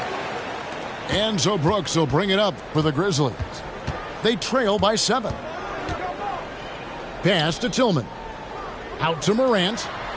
Enzo Brooks will bring it up for the Grizzlies. They trail by 7. Pass to Tillman. Out to Morant.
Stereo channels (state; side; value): identical; both; correlation 1.00